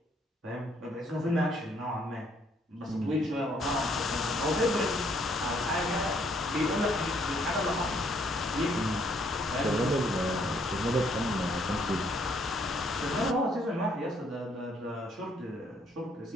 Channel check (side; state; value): both; normal; correlation 0.67